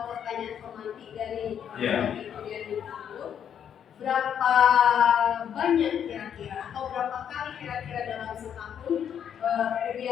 pertanyaan pemantik dari durian itu. Berapa banyak kira-kira atau berapa kali kira-kira dalam setahun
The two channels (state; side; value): quieter; right; 8.7 dB